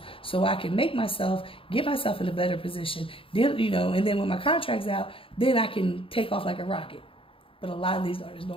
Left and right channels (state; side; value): late; right; 0.26 ms